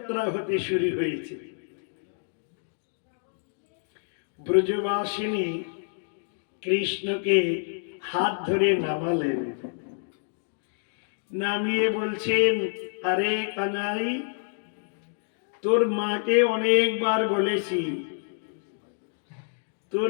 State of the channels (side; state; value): right; silent; digital silence